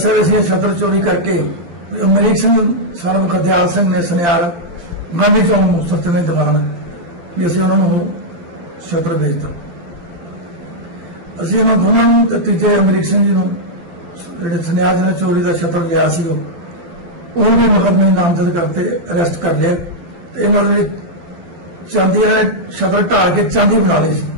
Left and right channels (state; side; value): late; left; 12 ms